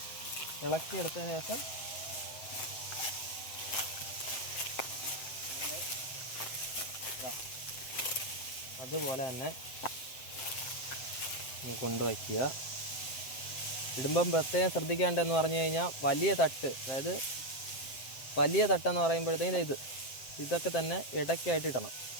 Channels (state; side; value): late; right; 7.7 ms